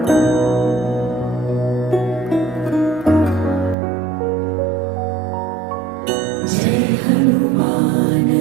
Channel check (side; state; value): left; drops out; at 3.8 s